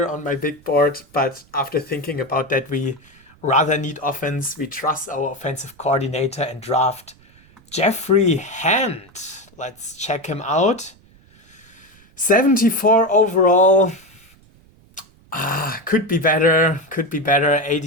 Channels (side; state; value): right; noise; rumble, 29 dB below the sound